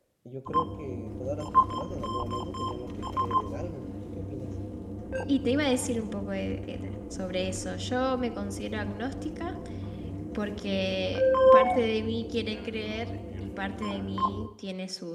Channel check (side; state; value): both; identical; correlation 1.00